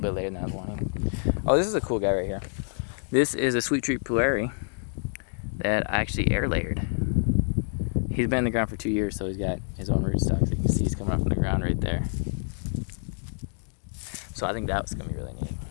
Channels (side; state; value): right; silent; digital silence